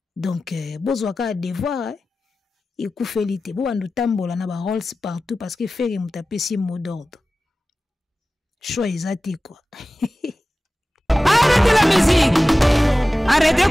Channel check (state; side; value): normal; both; correlation 0.96